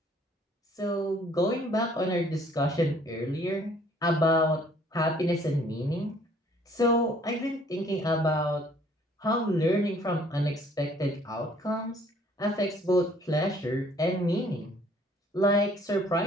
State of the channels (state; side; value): normal; both; correlation 0.59